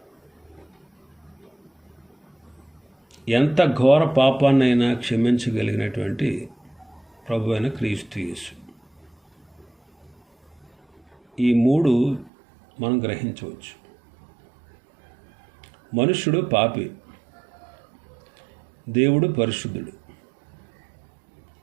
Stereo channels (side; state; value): left; drops out; at 12.3 s